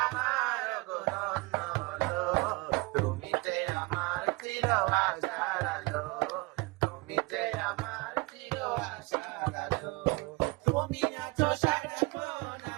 আমার ধন্য হলো, তুমি যে আমার চির আশার আলো, তুমি যে আমার চির আশার আলো, তুমি আছো সারাক্ষণ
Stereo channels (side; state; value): left; quieter; 25.5 dB